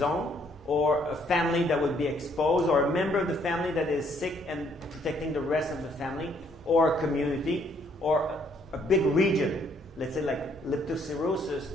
or a family that would be exposed, or a member of the family that is sick and protecting the rest of the family, or a community, or a big region. Let's say like leptospirosis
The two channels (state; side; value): normal; both; correlation 0.67